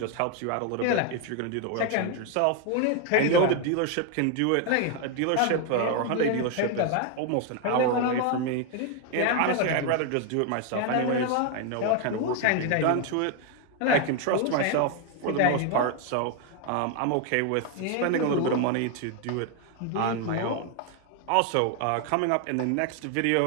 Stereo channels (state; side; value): different; both; correlation 0.01